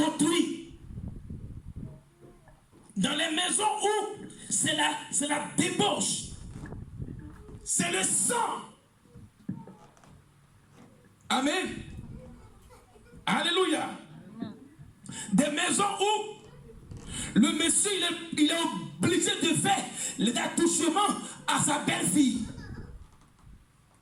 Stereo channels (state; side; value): identical; both; correlation 1.00